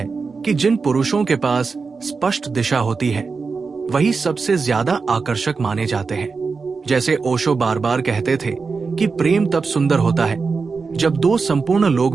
कि जिन पुरुषों के पास स्पष्ट दिशा होती है वही सबसे ज्यादा आकर्षक माने जाते हैं। जैसे ओशो बार बार कहते थे कि प्रेम तब सुंदर होता है जब दो संपूर्ण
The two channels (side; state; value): left; quieter; 4.7 dB